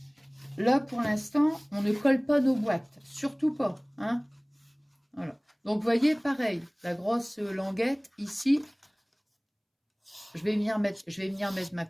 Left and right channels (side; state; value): both; identical; correlation 1.00